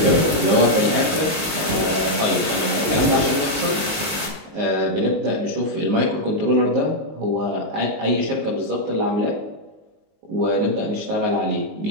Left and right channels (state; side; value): late; left; 19 ms